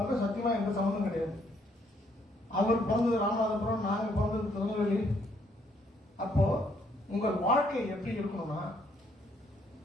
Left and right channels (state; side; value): normal; both; correlation 0.69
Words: சத்தியமா எந்த சம்மந்தம் கிடையாது. அவர் பிறந்தது ராமநாதபுரம், நாங்க பிறந்தது திருநெல்வேலி. அப்போ உங்கள் வாழ்க்கை எப்படி இருக்கணும்னா,